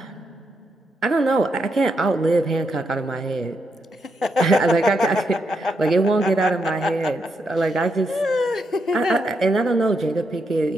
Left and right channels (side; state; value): both; normal; correlation 0.81